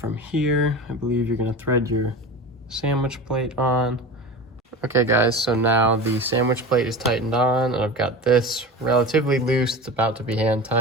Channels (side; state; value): both; normal; correlation 0.30